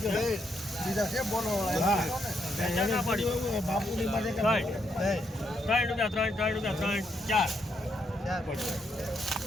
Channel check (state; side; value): normal; both; correlation 0.78